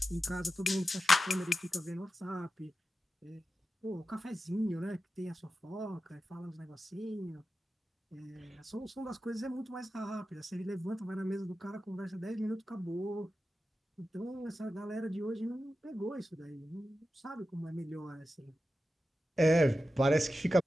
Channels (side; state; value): both; normal; correlation 0.92